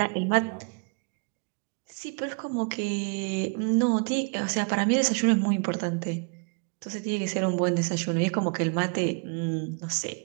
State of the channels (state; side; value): quieter; left; 36.5 dB